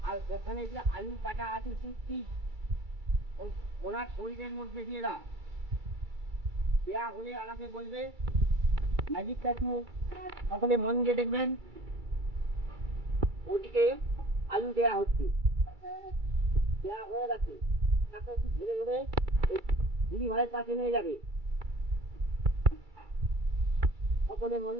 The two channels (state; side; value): late; left; 2.3 ms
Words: আর ওখানে যে আলু কাটা আছে সত্যি ওনার শরীরের মধ্যে দিয়ে দাও। দেওয়া হলে আমাকে বলবে। ম্যাজিকটা একটু সকলে মন দিয়ে দেখবেন। ওদিকে আলু দেওয়া হচ্ছে, দেওয়া হয়ে গেছে। তাকে একটু ধরে ধরে দিদি ভাইয়ের কাছে নিয়ে যাবে। সকলে মন